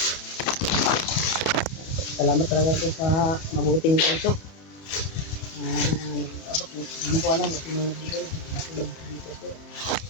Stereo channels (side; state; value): right; late; 31 ms